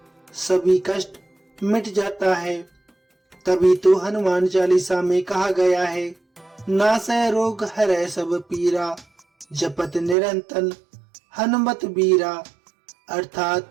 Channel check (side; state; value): left; drops out; at 10.2 s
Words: सभी कष्ट मिट जाता है। तभी तो हनुमान चालीसा में कहा गया है, नासै रोग हरै सब पीरा, जपत निरंतर हनुमत बीरा।